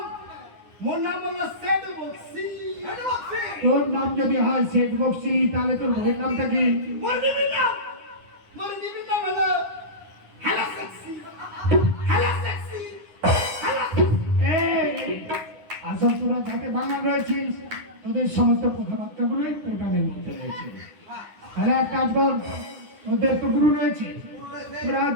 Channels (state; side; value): late; left; 9.7 ms